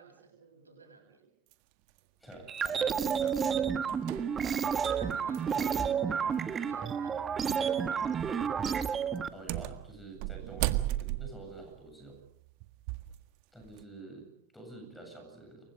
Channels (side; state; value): left; quieter; 7.4 dB